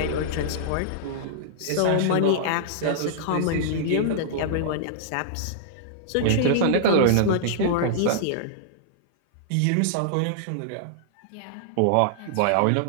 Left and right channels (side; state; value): both; different; correlation -0.01